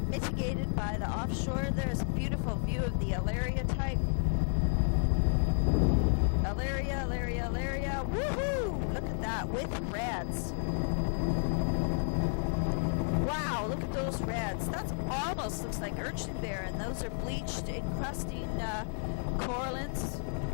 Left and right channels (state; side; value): silent; right; 57 dB below the other